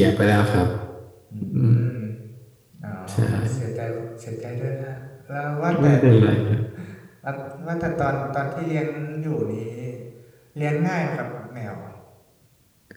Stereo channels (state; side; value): identical; both; correlation 1.00